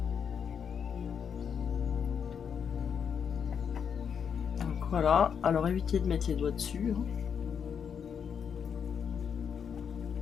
Donc voilà. Alors évitez de mettre les doigts dessus.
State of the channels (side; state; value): right; quieter; 7.3 dB